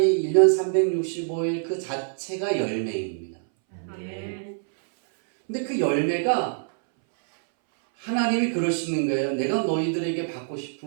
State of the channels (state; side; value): silent; left; 62 dB below the other